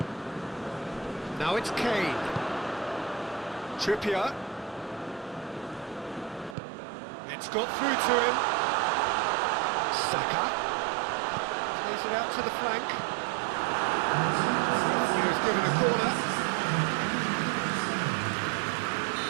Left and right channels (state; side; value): drops out; left; at 6.6 s